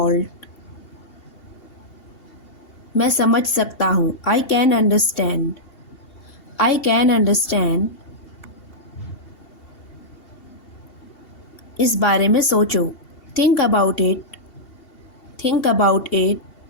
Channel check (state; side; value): late; right; 2.7 ms